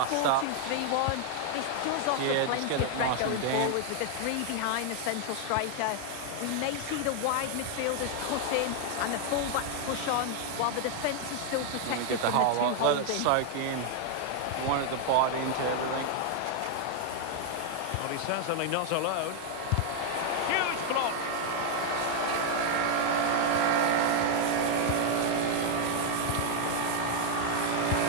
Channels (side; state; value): both; different; correlation 0.00